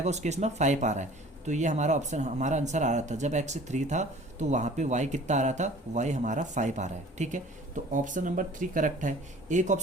उस केस में 5 आ रहा है, तो ये हमारा ऑप्शन, हमारा आंसर आ रहा था जब x 3 था तो वहाँ पे y कितना आ रहा था, y हमारा 5 आ रहा है, ठीक है। तो ऑप्शन नंबर 3 करेक्ट है। एक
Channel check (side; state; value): both; normal; correlation 0.47